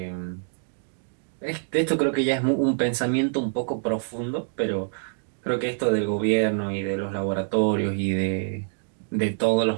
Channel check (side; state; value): left; silent; digital silence